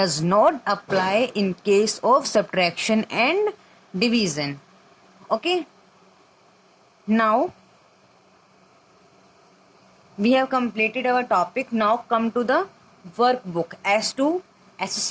not apply in case of subtraction and division. Okay, now we have completed our topic. Now come to the workbook as to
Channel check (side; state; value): both; identical; correlation 1.00